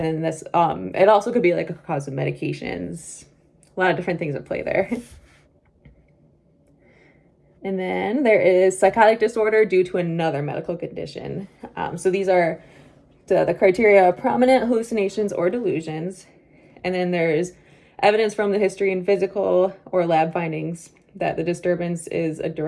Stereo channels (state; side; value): identical; both; correlation 1.00